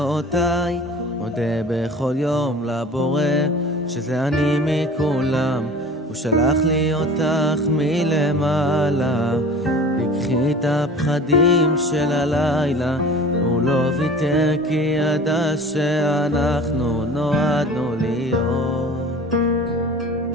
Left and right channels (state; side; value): normal; both; correlation 0.42